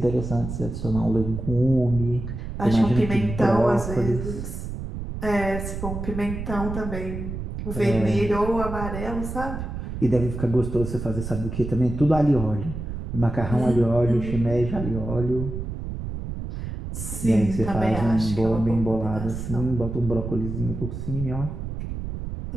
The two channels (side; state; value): right; noise; rumble, 6 dB below the sound